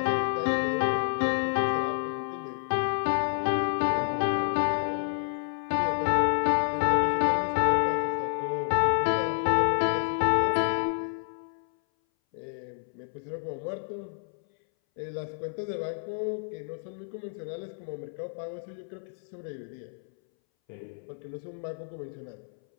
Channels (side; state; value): right; silent; 59 dB below the other